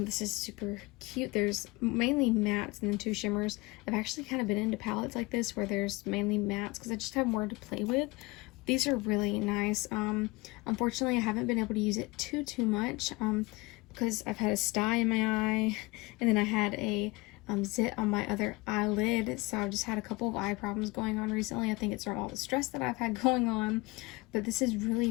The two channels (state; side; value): quieter; right; 23.8 dB